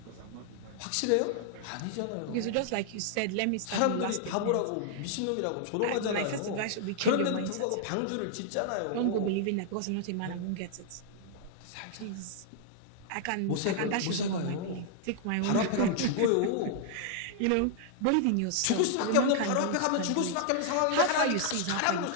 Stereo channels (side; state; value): both; different; correlation -0.01